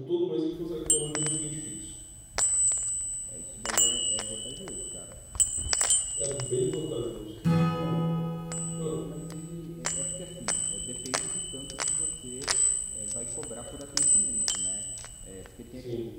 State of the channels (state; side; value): identical; both; correlation 1.00